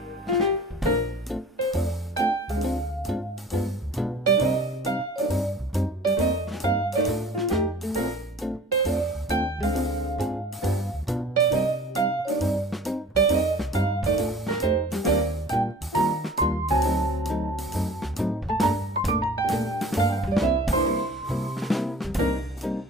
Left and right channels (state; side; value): normal; both; correlation 0.46